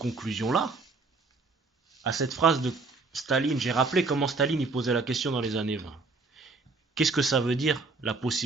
À cette phrase de Staline, j'ai rappelé comment Staline y posait la question dans les années 20. Qu'est-ce que ça veut dire, la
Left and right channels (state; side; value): quieter; left; 3.9 dB